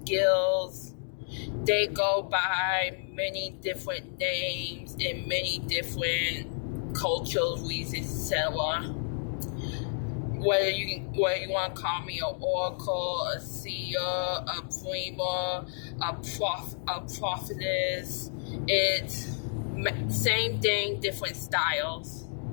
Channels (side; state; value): right; silent; digital silence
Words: they go by many different names in many different cultures, reasons, etc. Whether you want to call me an oracle, a seer, a dreamer, a prophetess, it's same thing, different styles.